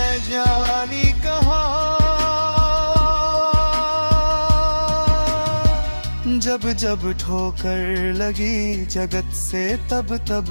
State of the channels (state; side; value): inverted; both; correlation -1.00